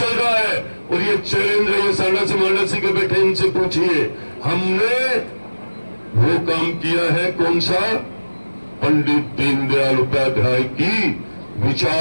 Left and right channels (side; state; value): both; inverted; correlation -1.00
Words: रहा है और ये चैलेंज है। ये सांडासी मांडासी के बैठे इनसे पूछिए, हमने वो काम किया है कौन सा? पंडित दीनदयाल उपाध्याय की